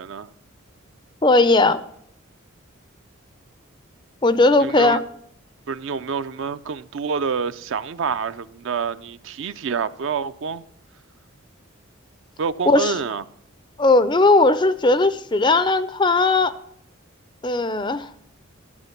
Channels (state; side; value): normal; both; correlation 0.30